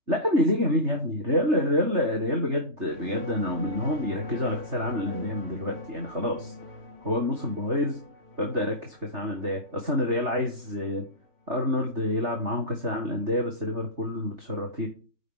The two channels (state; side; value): late; left; 3.3 ms